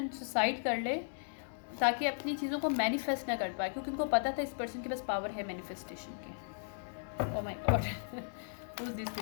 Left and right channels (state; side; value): silent; right; digital silence